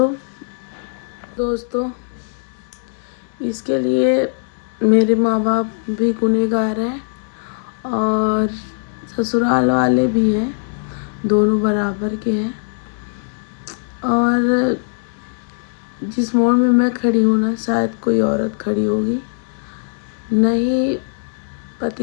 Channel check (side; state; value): right; silent; digital silence